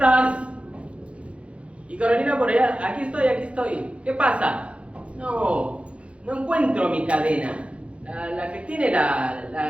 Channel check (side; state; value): left; late; 0.061 ms